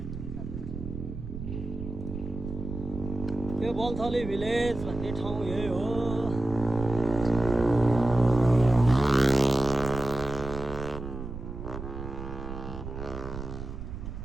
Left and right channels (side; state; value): right; noise; rumble, 8 dB below the sound